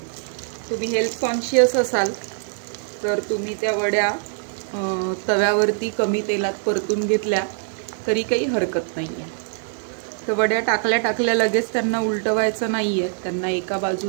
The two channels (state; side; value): silent; left; digital silence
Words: तुम्ही हेल्थ कॉन्शियस असाल तर तुम्ही त्या वड्या तव्यावरती कमी तेलात परतून घेतल्या तरी काही हरकत नाही आहे. तर वड्या टाकल्या लगेच त्यांना उलटवायचं नाही आहे. त्यांना एका